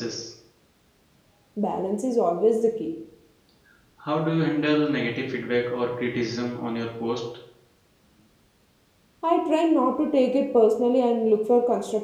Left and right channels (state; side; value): identical; both; correlation 1.00